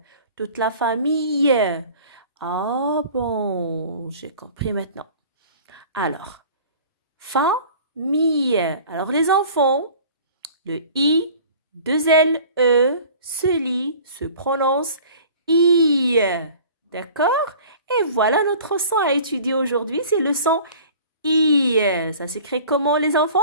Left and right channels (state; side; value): inverted; both; correlation -0.45